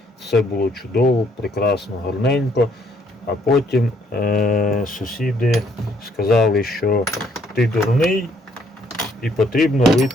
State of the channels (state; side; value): normal; both; correlation 0.67